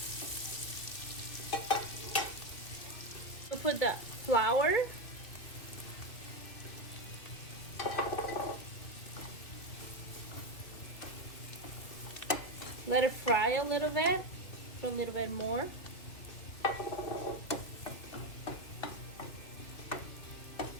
Put the flour, let it fry a little bit, put a little bit more.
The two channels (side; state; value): right; late; 2.4 ms